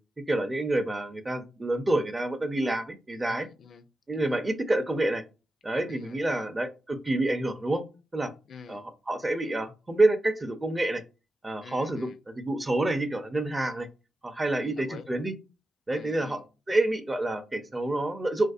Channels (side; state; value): both; normal; correlation 0.92